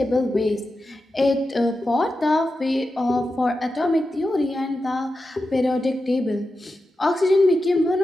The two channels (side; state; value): both; normal; correlation 0.91